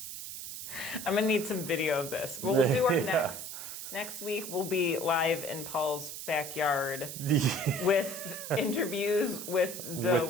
I'm going to need some video of this. We'll do our next week. We'll be live in Paul's backyard with interviews with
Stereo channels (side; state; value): right; noise; hiss, 8 dB below the sound